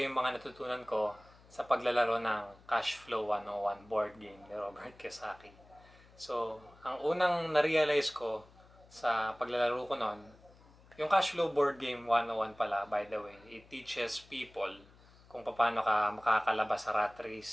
iyo yung mga natutunan ko sa paglalaro ng Cash Flow 101 board game ni Robert Kiyosaki. So, ang unang na-realize ko sa paglalaro ko noon, yung Cash Flow board game 101 pala, by the way, it teaches people kung paano ka makakalabas sa rat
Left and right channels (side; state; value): left; noise; hum, 25 dB below the sound